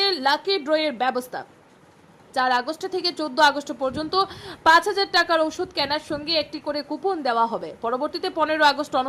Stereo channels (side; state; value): both; identical; correlation 1.00